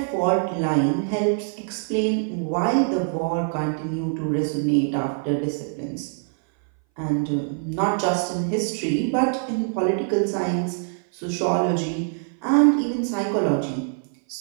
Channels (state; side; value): silent; left; 59 dB below the other